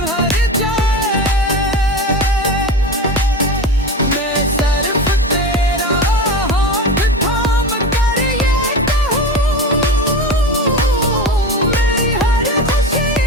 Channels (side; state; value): both; normal; correlation 0.27